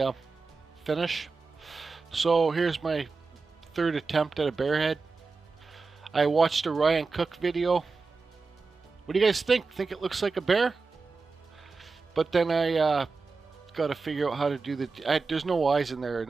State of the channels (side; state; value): left; quieter; 4.3 dB